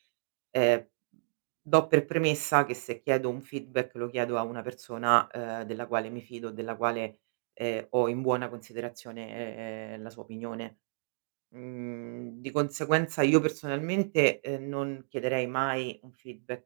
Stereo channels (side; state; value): left; silent; digital silence